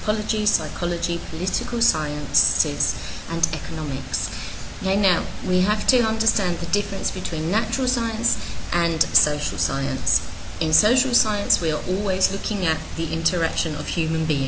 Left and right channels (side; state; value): both; identical; correlation 1.00